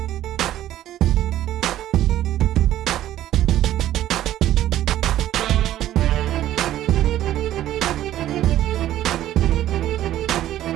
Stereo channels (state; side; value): quieter; left; 13.0 dB